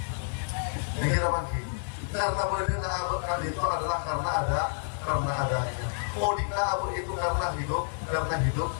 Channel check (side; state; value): right; silent; 58 dB below the other